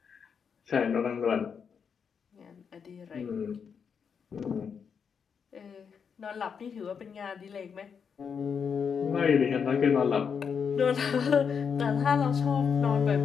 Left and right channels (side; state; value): right; quieter; 6.6 dB